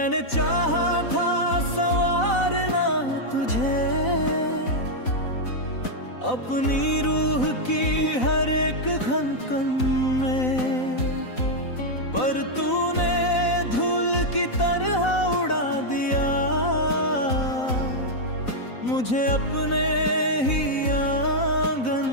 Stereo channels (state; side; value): late; right; 4.0 ms